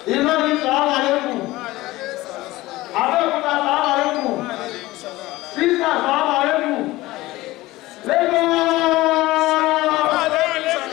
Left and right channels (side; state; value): right; quieter; 18.5 dB